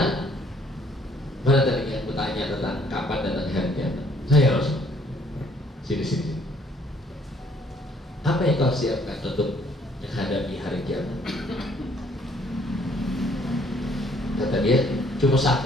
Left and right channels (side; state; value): both; normal; correlation 0.63